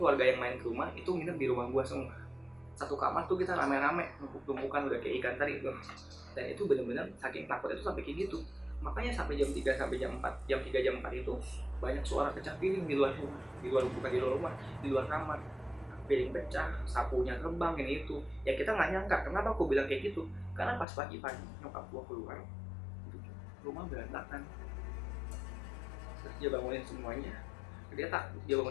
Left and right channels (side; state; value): right; drops out; at 20.9 s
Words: keluarga yang main ke rumah itu nginep di rumah gua semua. Satu kamar tuh kita rame-rame, numpuk-tumpukan udah kayak ikan teri tuh. Dan itu bener-bener saking takut itu sampai kayak gitu. Makanya sampai jam 3 sampai jam 4, jam 3 jam 4 itu banyak suara pecah piring di luar rumah, bukan di luar rumah, di luar kamar. Piring pecah, sapunya terbang, ini itu. Ya kita nggak nyangka. Kenapa aku bilang kayak gitu? Karena pas pagi-pagi nyokap gua keluar, rumah berantakan. Terus dia bangunin semuanya, dia